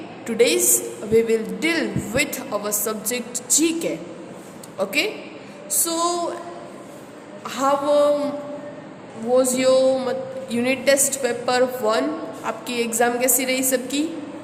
today's we will deal with our subject GK. Okay, so how was your unit test paper 1? आपकी एग्ज़ाम कैसी रही सबकी?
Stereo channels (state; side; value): identical; both; correlation 1.00